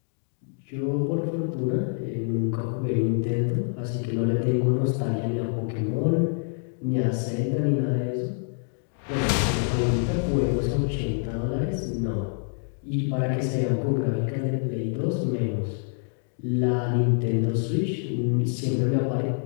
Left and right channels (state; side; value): silent; right; 61 dB below the other